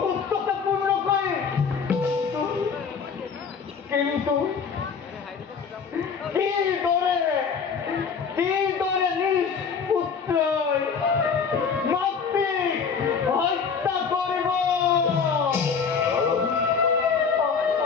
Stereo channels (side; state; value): right; quieter; 6.0 dB